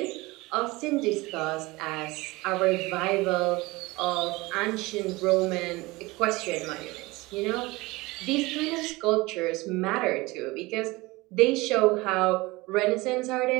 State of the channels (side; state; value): left; quieter; 22.1 dB